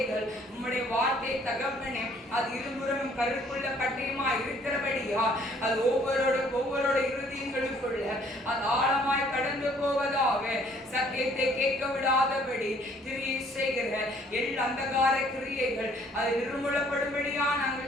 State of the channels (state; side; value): normal; both; correlation 0.61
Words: உம்முடைய வார்த்தை தகப்பனே, அது இருபுறமும் கருக்குள்ள பட்டயமா இருக்கிறபடியா அது ஒவ்வொருவரோட இருதயங்களுக்குள்ள அது ஆழமாய் கடந்து போவதாக, சத்தியத்தை கேட்க விடாதபடி கிரியை செய்கிற எல்லா அந்தகார கிரியைகள் அது நிர்மூலப்படும்படியா